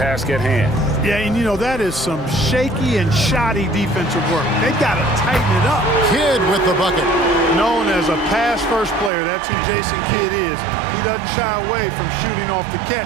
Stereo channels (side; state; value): left; drops out; at 9.1 s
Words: at hand. Yeah, and you know, that is some shaky and shoddy defensive work. They got to tighten it up. Kidd with the bucket. Known as a pass-first player, that's who Jason Kidd is. He doesn't shy away from shooting off the